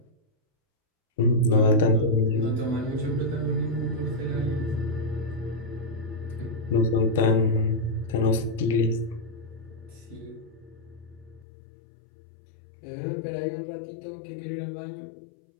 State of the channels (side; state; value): right; drops out; at 11.5 s